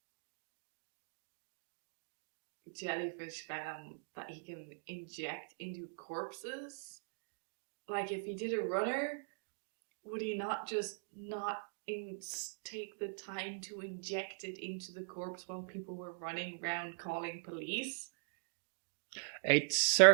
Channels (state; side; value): silent; left; digital silence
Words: jellyfish venom that he can inject into corpses? Like, if he did a runner, would he not just not take the time to inject it into the corpse while people were running around calling police? It